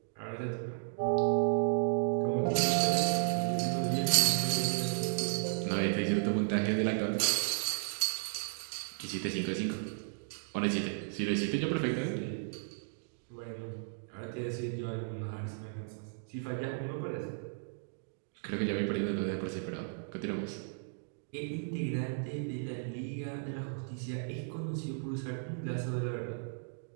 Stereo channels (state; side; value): silent; left; digital silence